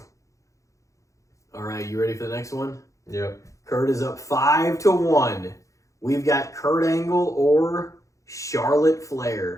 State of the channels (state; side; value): late; right; 0.15 ms